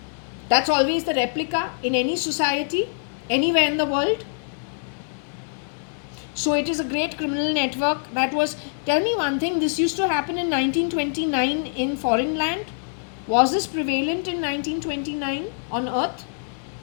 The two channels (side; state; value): right; silent; digital silence